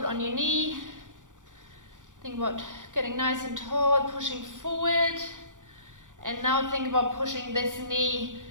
on your knee, think about getting nice and tall, pushing forward. And now think about pushing this knee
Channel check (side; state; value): left; late; 0.87 ms